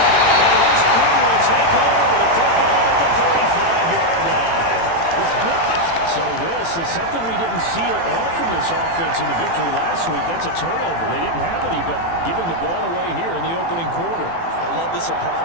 And his crew will take over with a football at the 35-yard line. So this is something we didn't see at all from this offense in the victory last week. That's a turnover. They didn't have any, but giving the ball away here in the opening quarter. I love the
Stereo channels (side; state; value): right; late; 18 ms